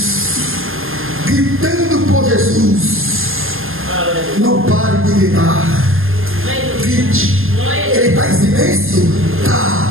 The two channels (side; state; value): left; late; 0.60 ms